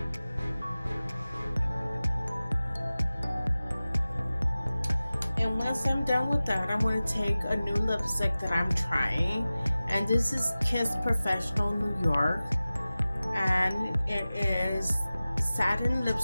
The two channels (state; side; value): inverted; both; correlation -0.97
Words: And once I'm done with that, I'm going to take a new lipstick that I'm trying. And this is Kiss Professional New York. And it is satin